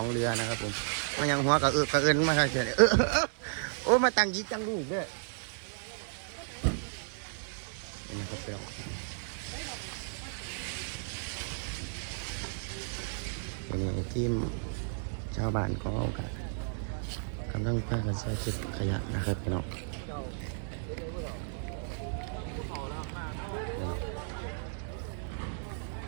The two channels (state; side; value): silent; left; digital silence